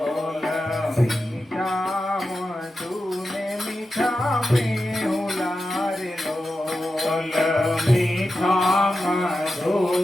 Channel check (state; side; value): normal; both; correlation 0.91